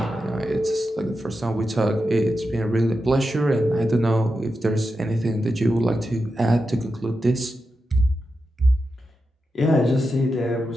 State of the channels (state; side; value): normal; both; correlation 0.89